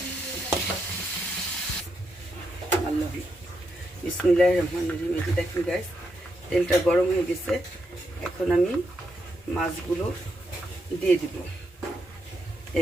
আল্লাহ বিসমিল্লাহির রহমানির রহিম। এই যে দেখেন গাইস, তেলটা গরম হয়ে গেছে। এখন আমি মাছগুলো দিয়ে দিব।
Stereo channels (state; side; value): normal; both; correlation 0.81